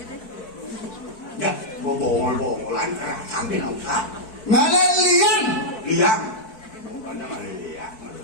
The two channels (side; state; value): right; late; 4.6 ms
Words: ya bongol-bongolan kerasan di nausa ngalilian liang bukannya ngaliliang